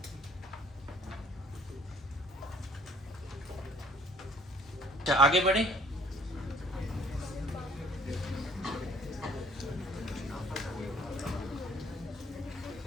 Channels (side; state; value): both; normal; correlation 0.59